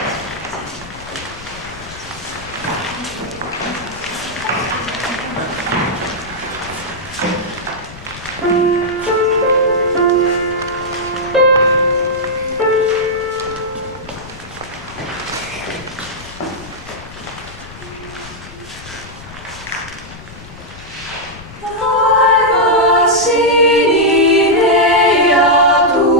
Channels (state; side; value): noise; left; rumble, 17 dB below the sound